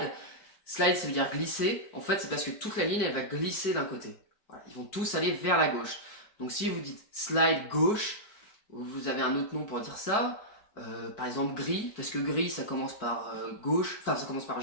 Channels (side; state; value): right; late; 4.6 ms